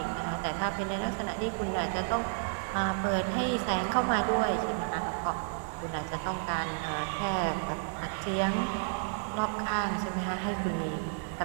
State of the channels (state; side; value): silent; left; digital silence